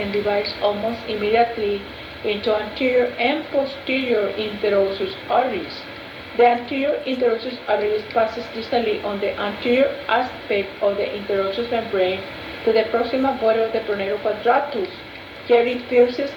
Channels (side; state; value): both; identical; correlation 1.00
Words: divides almost immediately into anterior and posterior interosseous arteries. The anterior interosseous artery passes distally on the anterior aspect of the interosseous membrane to the proximal body of the pronator quadratus. Here it pierces